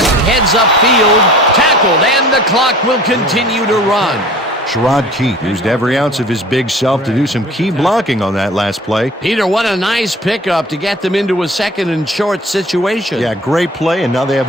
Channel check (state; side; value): normal; both; correlation 0.45